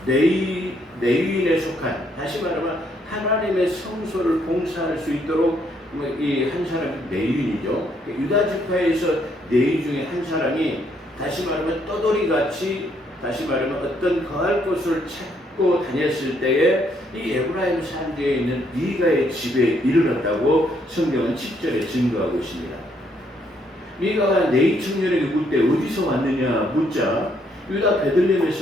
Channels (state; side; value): normal; both; correlation 0.71